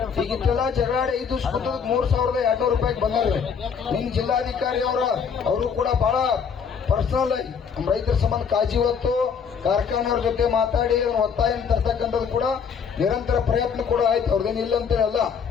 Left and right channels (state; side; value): quieter; right; 6.6 dB